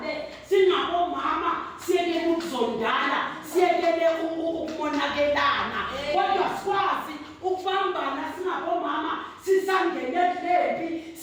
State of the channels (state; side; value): identical; both; correlation 1.00